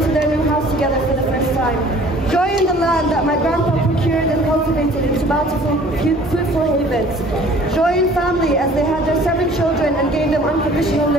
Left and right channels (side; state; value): both; normal; correlation 0.51